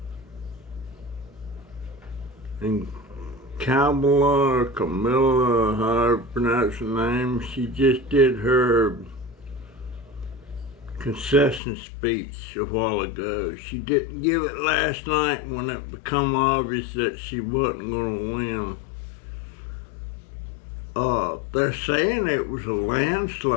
And Kamala or Camilla, however you pronounce her name, she just did her concession speech a while ago. She didn't give it last night when it became obvious that she wasn't going to win. They're saying it was a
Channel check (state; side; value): drops out; right; at 11.6 s